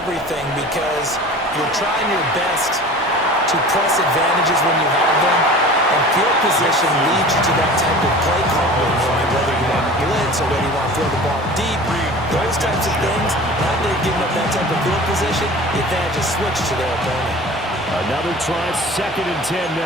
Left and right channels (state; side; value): normal; both; correlation 0.40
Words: everything, because you're trying your best to press advantages when you have them, and field position leads you to that type of play calling, whether you want to blitz or whether you want to throw the ball deep. Those types of things, now that they've given up that type of field position, the advantage is switched to their opponent. Another try, 2nd and 10